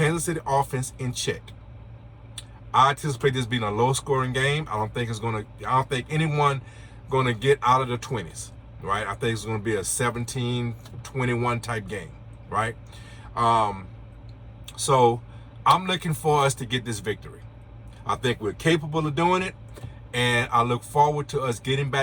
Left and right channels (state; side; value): identical; both; correlation 1.00